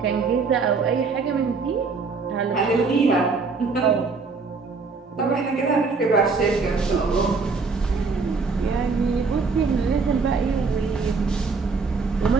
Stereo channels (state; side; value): quieter; left; 4.5 dB